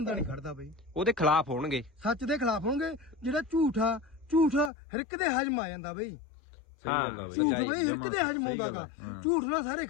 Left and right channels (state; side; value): drops out; right; at 4.7 s